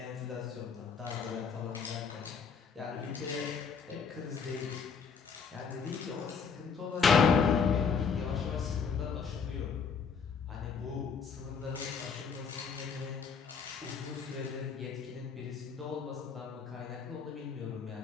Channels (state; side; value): quieter; right; 6.0 dB